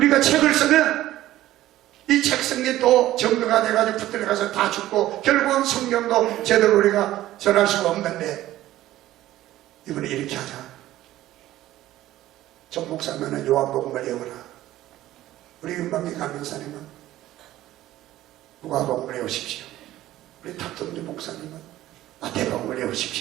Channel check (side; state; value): left; quieter; 14.7 dB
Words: 책을 쓰면 이 책 성경이 또 정도가 돼가지고 붙들어가서 다 죽고 결국은 성경도 제대로 우리가 전할 수가 없는데 이번에 이렇게 하자. 정 목사님은 요한복음을 외워라. 우리 윤방기 강명사님은 누가복음을 외우십시오. 우리 탑동주 목사님은 마태복음을